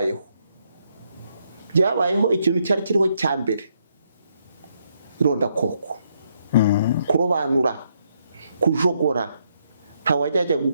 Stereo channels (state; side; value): inverted; both; correlation -0.75